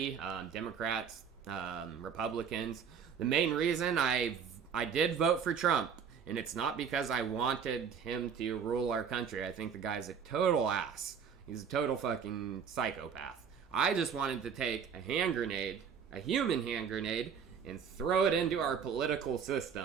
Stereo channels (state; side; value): quieter; left; 7.1 dB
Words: Democrats, Republicans. The main reason I did vote for Trump, and it's not because I wanted him to rule our country. I think the guy's a total ass. He's a total fucking psychopath. I just wanted to take a hand grenade, a human hand grenade, and throw it into our political